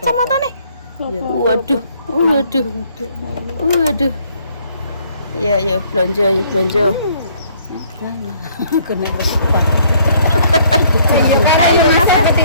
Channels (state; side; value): inverted; both; correlation -0.63